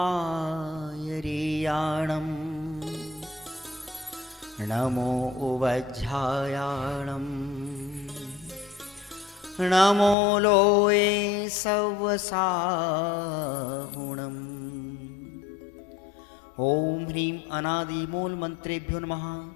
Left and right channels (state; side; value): drops out; right; at 10.2 s